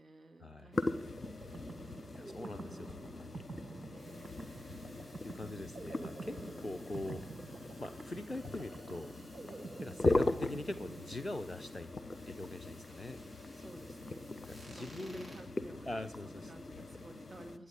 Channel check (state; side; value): normal; both; correlation 0.92